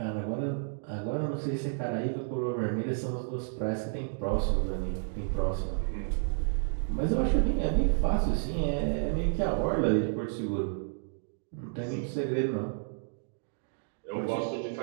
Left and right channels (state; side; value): silent; left; digital silence